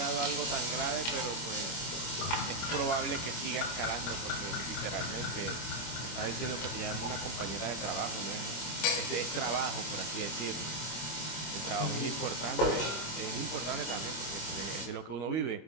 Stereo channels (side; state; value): right; late; 25 ms